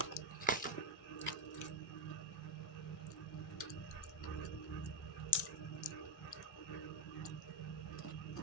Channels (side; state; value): both; normal; correlation 0.05